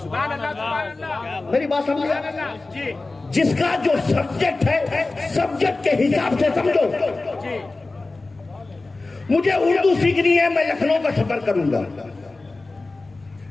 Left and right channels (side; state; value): right; quieter; 3.3 dB